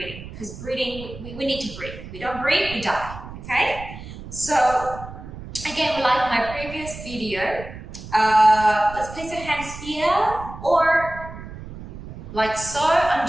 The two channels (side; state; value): right; noise; rumble, 13 dB below the sound